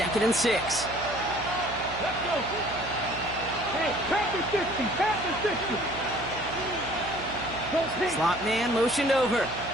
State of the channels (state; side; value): noise; right; hum, 12 dB below the sound